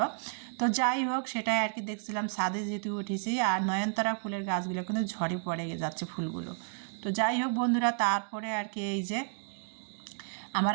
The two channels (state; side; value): silent; left; 57 dB below the other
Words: তো যাই হোক, সেটাই আর কি দেখছিলাম ছাদে যেহেতু উঠেছি। আর নয়নতারা ফুলের গাছগুলো কিন্তু ঝরে পড়ে যাচ্ছে ফুলগুলো। তো যাই হোক বন্ধুরা, তারপরে আর কি এই যে